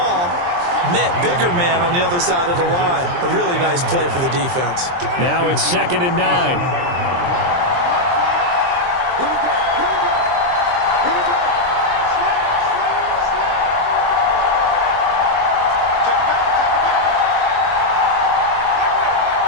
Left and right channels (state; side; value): late; left; 23 ms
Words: met bigger man on the other side of the line. A really nice play for the defense. Now it's 2nd and 9. Here we go. Slam. Check it back.